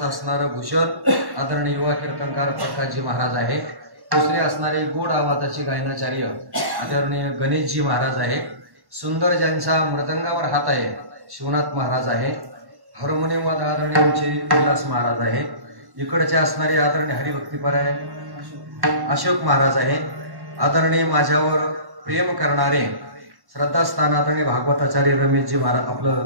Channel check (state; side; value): late; left; 1.1 ms